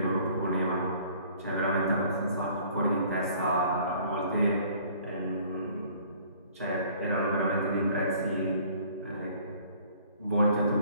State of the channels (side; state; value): both; inverted; correlation -0.55